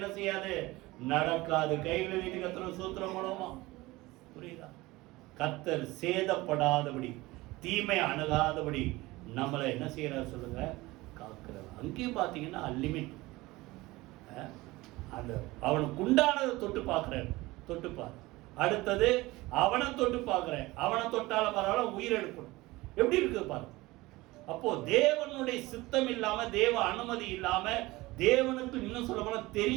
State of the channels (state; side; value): quieter; left; 20.2 dB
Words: செய்யாது, நடக்காது. கையில வீட்டு கர்த்தர் சூத்திரம் மூலமா புரியுதா? கர்த்தர் சேதப்படாதபடி தீமை அணுகாதபடி நம்மளை என்ன செய்யறாரு சொல்லுங்க, காக்கிறார். அங்கேயும் பாத்தீங்கன்னா லிமிட். அந்த அவனுக்கு உண்டானதை தொட்டு பார்க்கிறேன், தொட்டுப்பார். அடுத்தது அவனை தொட்டு பார்க்கிறேன், அவனை தொட்டால பரவாயில்ல உயிர் எடுக்கணும். எப்படி இருக்கு பாரு. அப்போ தேவனுடைய சித்தம் இல்லாம, தேவ அனுமதி இல்லாம, தேவனுக்கு இன்னும் சொல்ல போனா